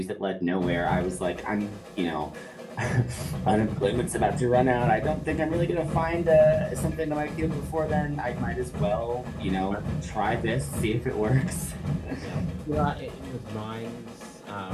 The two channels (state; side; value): identical; both; correlation 1.00